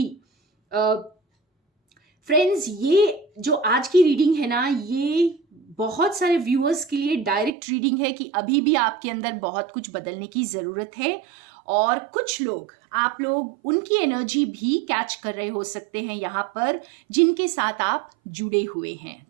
फ्रेंड्स, ये जो आज की रीडिंग है ना, ये बहुत सारे व्यूअर्स के लिए डायरेक्ट रीडिंग है कि अभी भी आपके अंदर बहुत कुछ बदलने की जरूरत है, और कुछ लोग, आप लोग उनकी एनर्जी भी कैच कर रहे हो सकते हैं यहाँ पर, जिनके साथ आप जुड़े हुए हैं,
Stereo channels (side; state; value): left; drops out; at 7.5 s